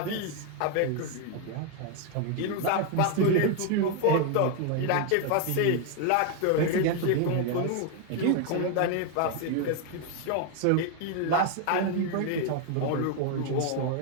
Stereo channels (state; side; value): different; both; correlation 0.01